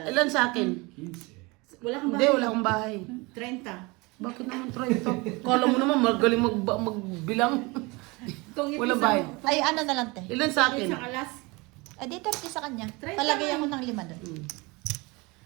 Ilan sa akin? Wala kang Hindi, bahay. wala akong bahay. 30. Bakit naman try ito? Kala mo naman magaling magbilang. Tungin, Wala isang- bahay. Ay, ano na lang, te. Ilan sa Itong akin? isang alas. Ay, di 30 sa kanya. 30 Palagay man. ako ng 5 doon.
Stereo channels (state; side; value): quieter; left; 25.4 dB